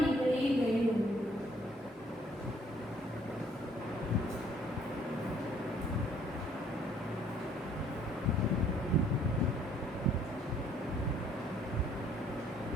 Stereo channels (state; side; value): normal; both; correlation 0.62